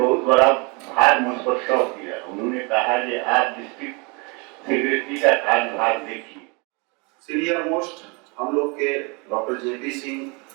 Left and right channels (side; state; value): left; quieter; 30.5 dB